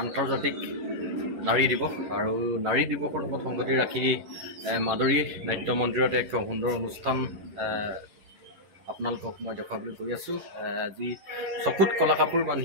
আন্তৰ্জাতিক নাৰী দিৱস আৰু নাৰী দিৱসৰ লগত সংগতি ৰাখি মাদৰী নাট্য মন্দিৰত এক সুন্দৰ অনুষ্ঠান আপোনালোকক মই দেখুৱাবলৈ গৈ আছোঁ। আজি চকুত কলা কাপোৰ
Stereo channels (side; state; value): left; late; 11 ms